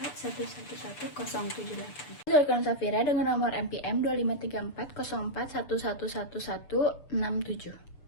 Zulkan Safira dengan nomor NPM 2534041111167.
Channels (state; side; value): late; right; 6.8 ms